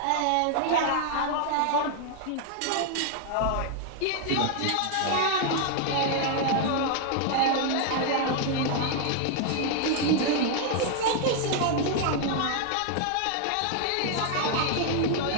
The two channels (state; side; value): different; both; correlation 0.00